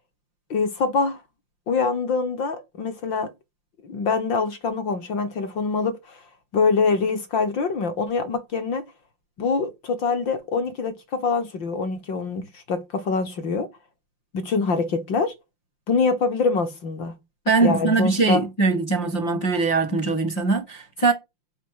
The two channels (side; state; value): right; late; 5.7 ms